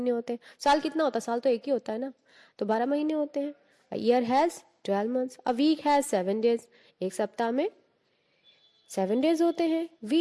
होते हैं। साल कितना होता है, साल तो एक ही होता है ना, तो 12 महीने होते हैं। A year has 12 months. A week has 7 days, एक सप्ताह में 7 डेज होते हैं। We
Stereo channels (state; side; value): identical; both; correlation 1.00